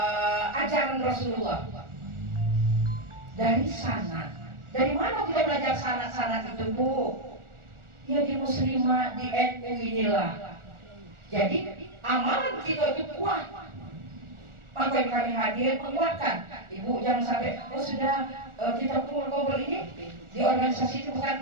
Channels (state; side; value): late; left; 1.4 ms